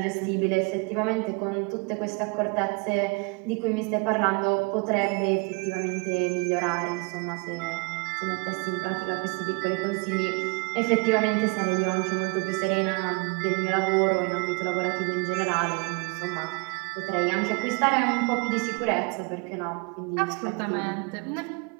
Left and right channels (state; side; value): quieter; left; 30.9 dB